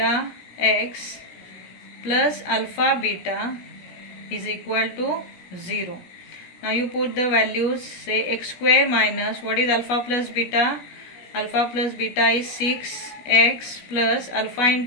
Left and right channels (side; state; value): right; late; 17 ms